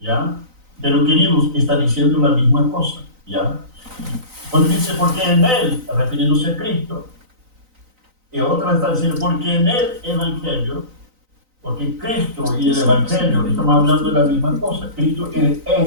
Pero queridos, está diciendo la misma cosa, ¿ya? Cuando dice, porque en él, refiriéndose a Cristo, y otra está diciendo, porque en el Evangelio, porque Cristo y el Evangelio, estamos hablando de la misma cosa, Cristo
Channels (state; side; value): late; left; 3.9 ms